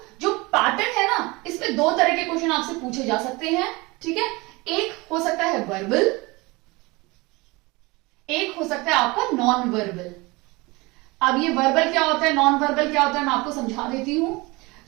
जो पैटर्न है ना, इसमें दो तरह के क्वेश्चन आपसे पूछे जा सकते हैं। ठीक है, एक हो सकता है वर्बल, एक हो सकता है आपका नॉन वर्बल। अब ये वर्बल क्या होता है, नॉन वर्बल क्या होता है, मैं आपको समझा देती हूं।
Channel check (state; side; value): quieter; left; 24.0 dB